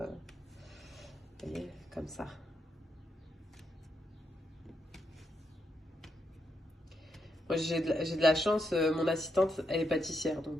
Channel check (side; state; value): both; normal; correlation 0.81